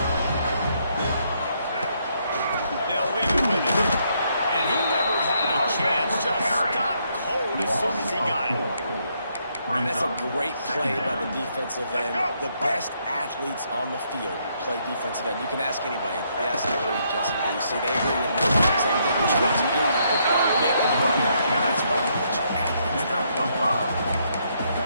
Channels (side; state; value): both; inverted; correlation -0.73